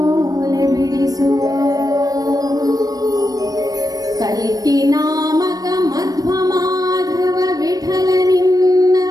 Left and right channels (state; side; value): late; left; 0.18 ms